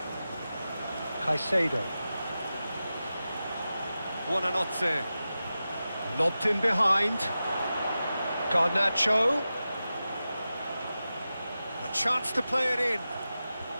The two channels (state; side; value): inverted; both; correlation -0.93